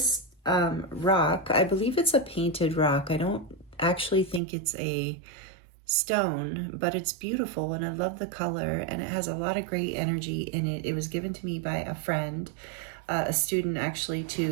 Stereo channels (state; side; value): drops out; left; at 4.4 s